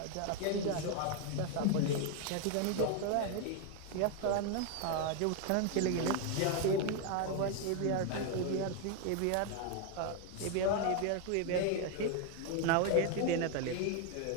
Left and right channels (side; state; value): both; different; correlation 0.01